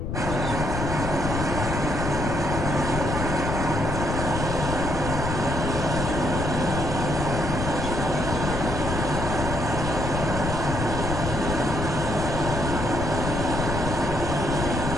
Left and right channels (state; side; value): noise; left; rumble, 3 dB below the sound